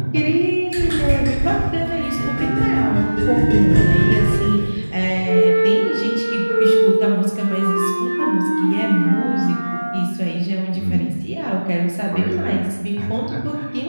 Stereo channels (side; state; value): both; inverted; correlation -1.00